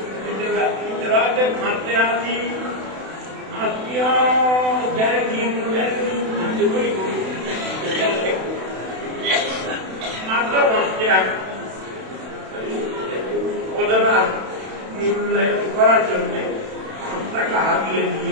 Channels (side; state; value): left; late; 32 ms